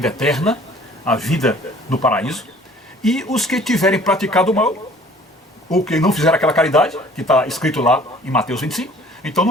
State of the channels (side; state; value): both; normal; correlation 0.52